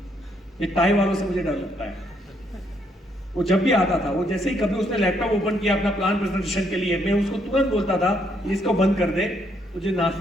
ये टाई वालों से मुझे डर लगता है। वो जब भी आता था, वो जैसे ही कभी उसने लैपटॉप ओपन किया अपना प्लान प्रेजेंटेशन के लिए, मैं उसको तुरंत बोलता था इसको बंद कर दे, तुझे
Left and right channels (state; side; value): normal; both; correlation 0.72